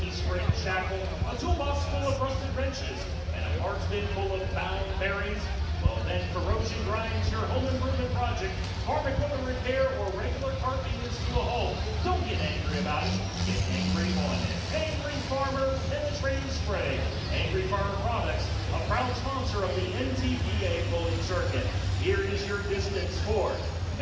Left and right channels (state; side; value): identical; both; correlation 1.00